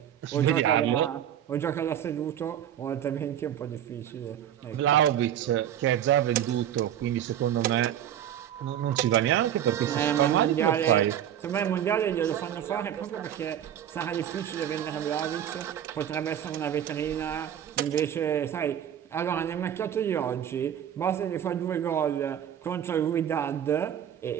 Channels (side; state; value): left; quieter; 10.3 dB